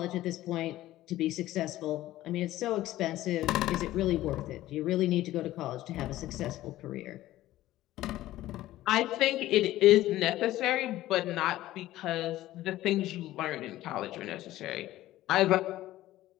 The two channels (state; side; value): quieter; right; 15.2 dB